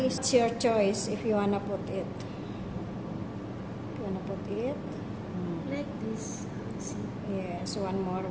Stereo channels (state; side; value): identical; both; correlation 1.00